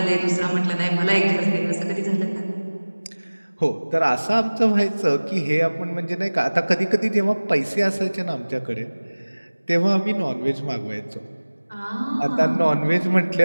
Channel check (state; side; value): inverted; both; correlation -1.00